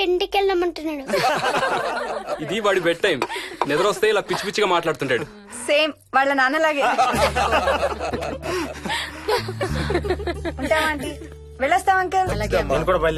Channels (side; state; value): both; identical; correlation 1.00